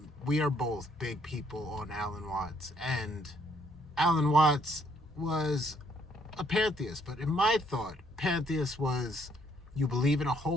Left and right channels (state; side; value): normal; both; correlation 0.68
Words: we are both big people on Alan Watts. And Alan Watts was a pantheist, but in my thought, pantheist was you believe in a